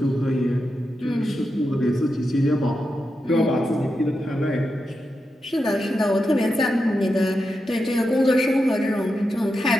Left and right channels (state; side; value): normal; both; correlation 0.88